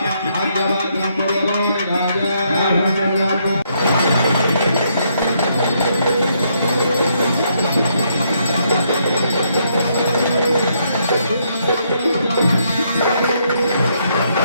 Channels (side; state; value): both; inverted; correlation -0.74